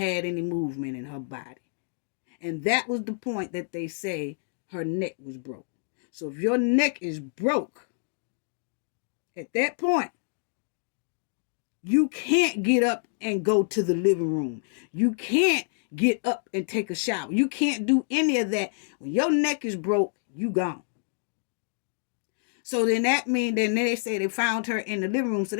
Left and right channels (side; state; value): right; silent; digital silence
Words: any movement in her body. And that was the point that they say her neck was broke. So if your neck is broke, at that point, you can't get up and go to the living room. You can't get up and take a shower. You can't do any of that. When your neck is broke, you gone. So then that means, then they say they found her in the living room. So